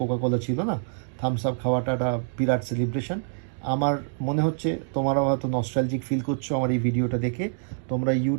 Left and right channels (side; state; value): left; silent; digital silence